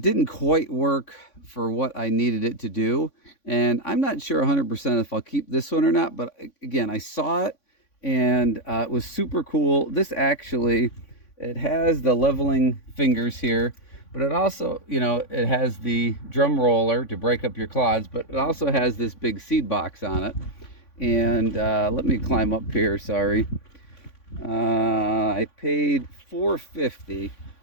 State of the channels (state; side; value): late; right; 3.5 ms